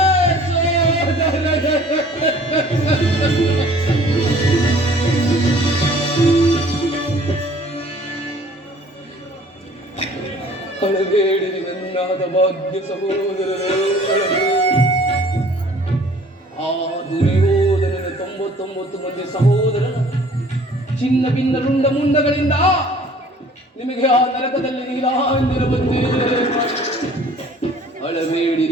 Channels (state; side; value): normal; both; correlation 0.52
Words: ಸೋದರರೇ. ಅಳಬೇಡಿರಿ ನನ್ನಾದ ಭಾಗ್ಯ ಸಹೋದರರೇ, ಆ ದುರ್ಯೋಧನನ 99 ಮಂದಿ ಸಹೋದರನ ಚಿನ್ನ ಭಿನ್ನ ರುಂಡ ಮುಂಡಗಳಿಂದ ನಿಮಗೆ ಆ ನರಕದಲ್ಲಿ ನೀಲಾಂಜನ ಬಂದೇ.